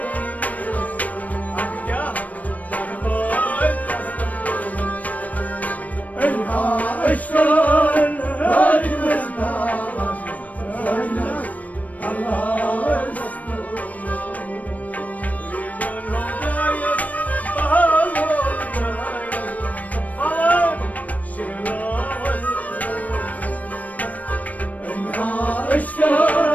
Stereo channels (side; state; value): right; late; 0.072 ms